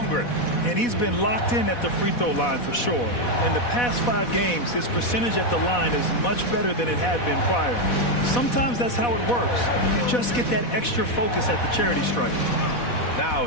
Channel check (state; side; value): late; right; 4.1 ms